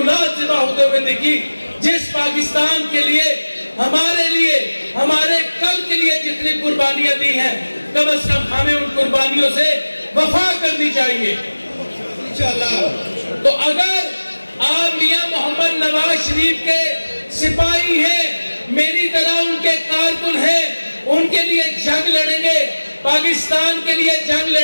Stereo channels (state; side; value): inverted; both; correlation -1.00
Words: सिवा होते हुए देखी। जिस पाकिस्तान के लिए, हमारे कल के लिए जितनी कुर्बानियां दी हैं, कम से कम हमें उन कुर्बानियों से वफा करनी चाहिए इंशाअल्लाह। तो अगर आप मियां मोहम्मद नवाज शरीफ के सिपाही हैं, मेरी तरह उनके कारकुन हैं, उनके लिए जंग लड़ेंगे, पाकिस्तान के लिए जंग